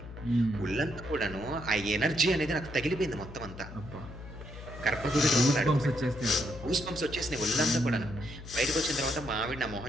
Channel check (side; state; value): left; noise; hum, 13 dB below the sound